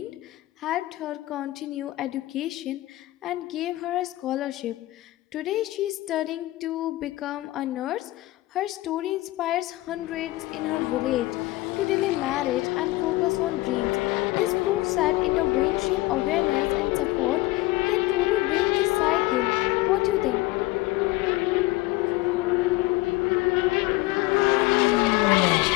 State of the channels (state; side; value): quieter; right; 19.1 dB